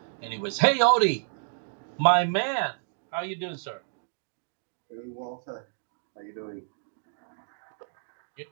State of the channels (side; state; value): left; silent; digital silence